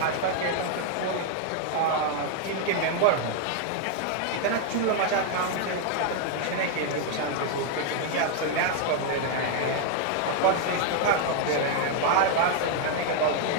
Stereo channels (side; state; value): both; different; correlation 0.00